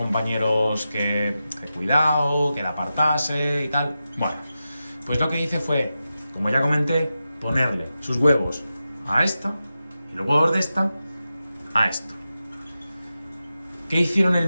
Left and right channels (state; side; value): inverted; both; correlation -0.92